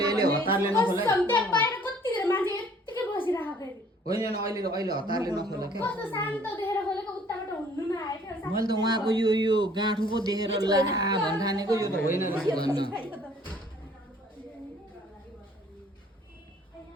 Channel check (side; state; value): both; normal; correlation 0.57